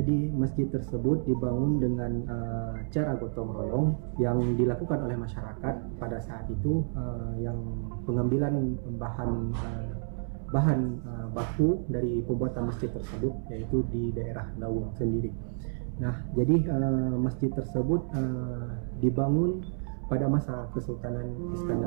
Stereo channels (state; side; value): silent; left; 58 dB below the other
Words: masjid tersebut dibangun dengan cara gotong royong yang dilakukan oleh masyarakat pada saat itu, yang pengambilan bahan baku dari pembuatan masjid tersebut yaitu di daerah Lawung sendiri. Nah, jadi masjid tersebut dibangun pada masa Kesultanan